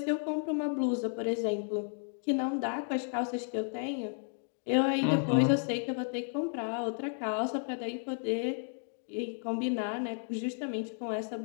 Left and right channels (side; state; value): right; silent; 56 dB below the other